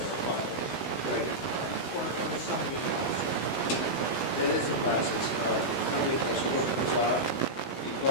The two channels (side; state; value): right; late; 16 ms